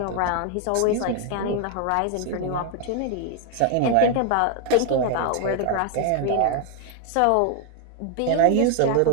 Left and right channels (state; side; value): different; both; correlation 0.00